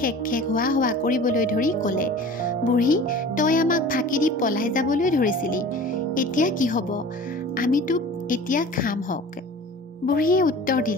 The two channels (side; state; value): both; normal; correlation 0.41